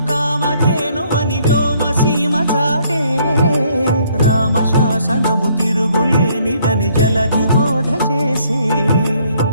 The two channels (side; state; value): both; inverted; correlation -0.65